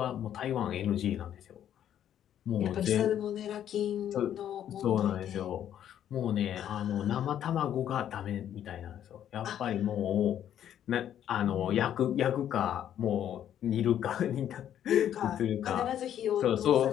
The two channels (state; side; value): quieter; right; 10.4 dB